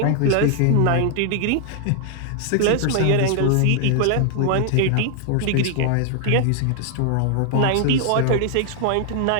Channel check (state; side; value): different; both; correlation 0.00